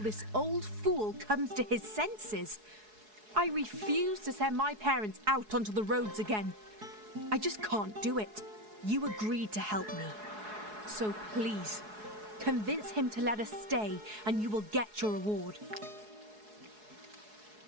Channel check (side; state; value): left; late; 4.7 ms